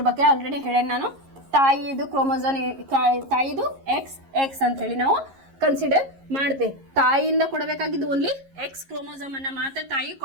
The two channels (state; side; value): late; left; 11 ms